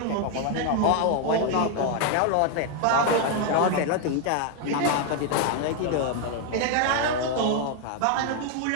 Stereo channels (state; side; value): different; both; correlation 0.00